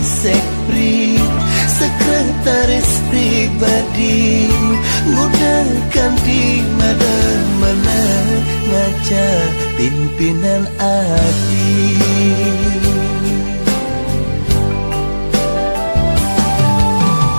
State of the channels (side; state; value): both; inverted; correlation -1.00